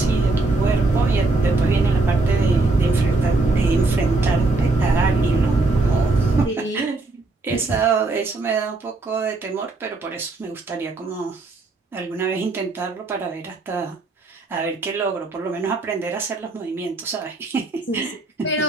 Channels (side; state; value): left; quieter; 3.4 dB